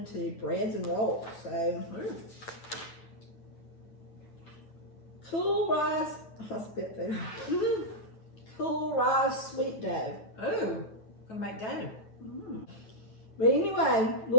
to breads and rolls. So cool rice. I spit food. Cool rice sweet dough. Oh, gonna make dough. But anyway,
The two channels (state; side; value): late; right; 9.3 ms